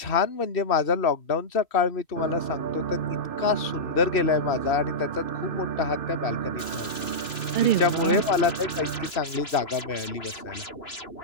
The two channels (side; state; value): right; late; 2.9 ms